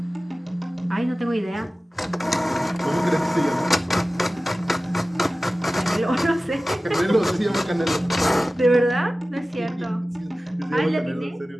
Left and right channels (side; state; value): both; normal; correlation 0.96